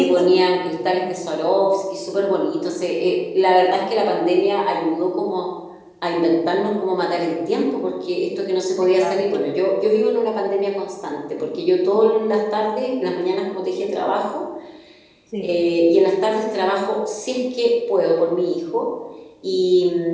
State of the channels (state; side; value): identical; both; correlation 1.00